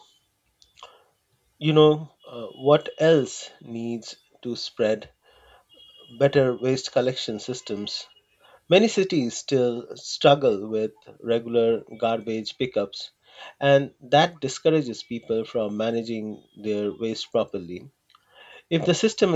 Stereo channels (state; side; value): identical; both; correlation 1.00